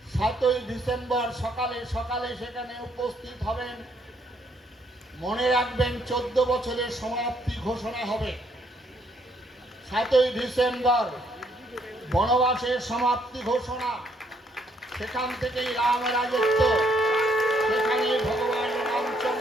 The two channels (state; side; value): normal; both; correlation 0.70